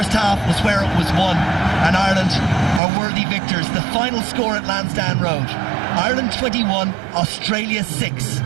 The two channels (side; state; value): left; drops out; at 2.8 s